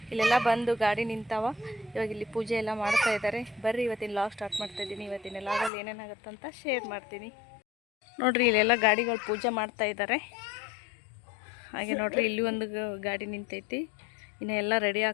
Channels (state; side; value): drops out; right; at 5.7 s